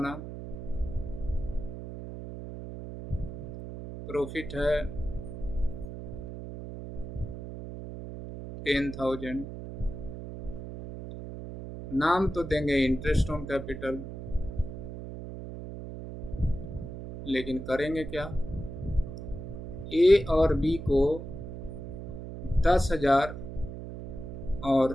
प्रॉफिट है 10,000, नाम तो देंगे इंटरेस्ट ऑन कैपिटल, लेकिन करेंगे क्या, ए और बी को 10,000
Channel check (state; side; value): noise; right; hum, 9 dB below the sound